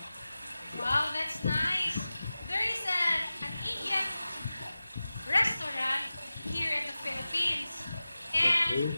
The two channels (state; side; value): inverted; both; correlation -0.95